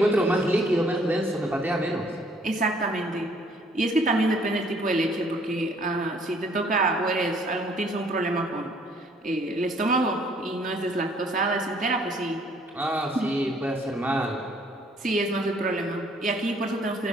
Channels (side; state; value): both; normal; correlation 0.62